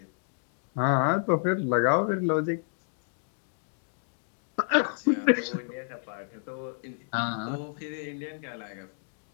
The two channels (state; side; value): silent; right; digital silence